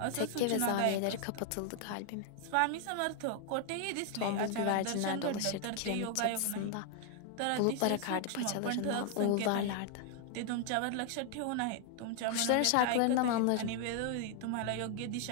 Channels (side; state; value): both; different; correlation 0.00